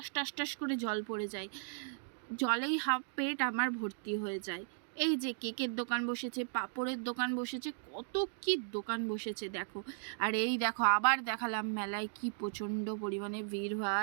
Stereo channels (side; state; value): left; silent; digital silence